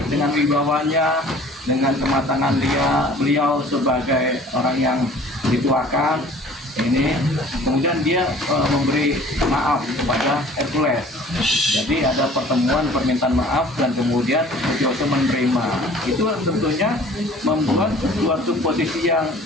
dengan wibawanya, dengan kematangan beliau sebagai orang yang dituakan ini, kemudian dia memberi maaf kepada Hercules. Jadi ada pertemuan permintaan maaf dan kemudian Sutioso menerima. Itu tentunya membuat suatu posisi yang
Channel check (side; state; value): both; normal; correlation 0.49